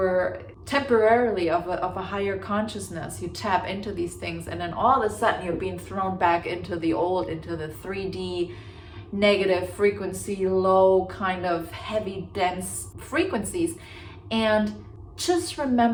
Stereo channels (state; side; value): identical; both; correlation 1.00